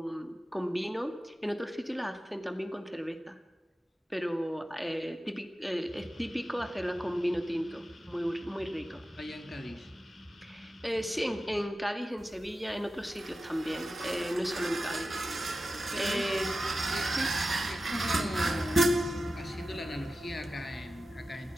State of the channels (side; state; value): both; normal; correlation 0.93